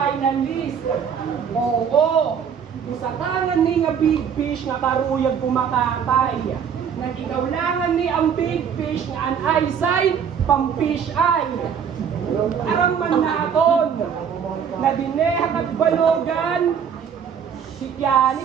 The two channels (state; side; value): quieter; left; 7.5 dB